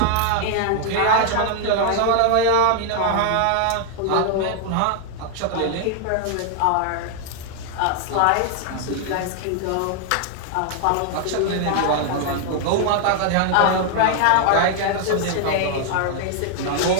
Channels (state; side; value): different; both; correlation 0.00